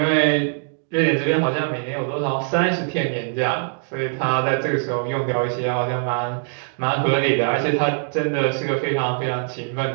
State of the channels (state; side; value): silent; left; digital silence